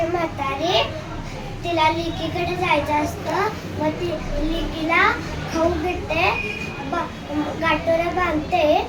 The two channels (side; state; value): both; identical; correlation 1.00